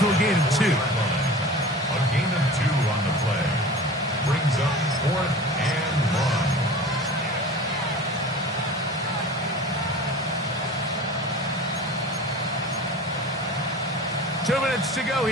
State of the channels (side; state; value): both; normal; correlation 0.37